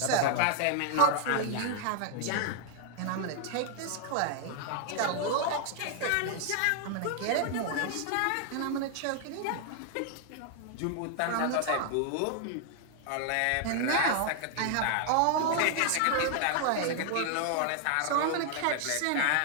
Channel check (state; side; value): different; both; correlation 0.00